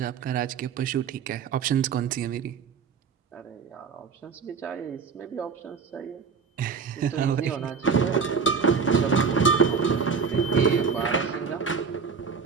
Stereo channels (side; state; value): left; quieter; 5.8 dB